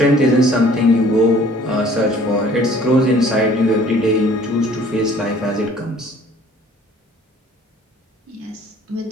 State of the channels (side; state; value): both; normal; correlation 0.54